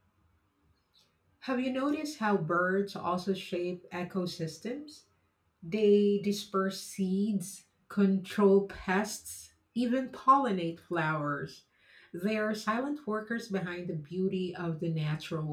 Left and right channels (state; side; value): identical; both; correlation 1.00